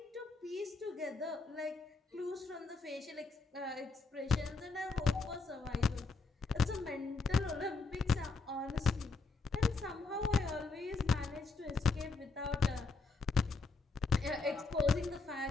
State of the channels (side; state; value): right; quieter; 3.9 dB